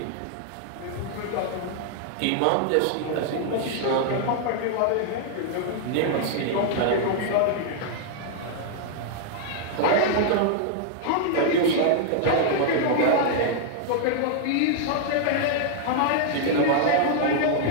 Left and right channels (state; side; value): different; both; correlation -0.01